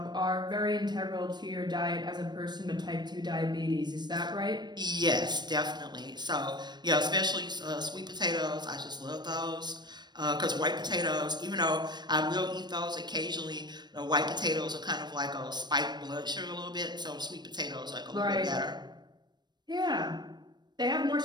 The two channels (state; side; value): late; left; 0.21 ms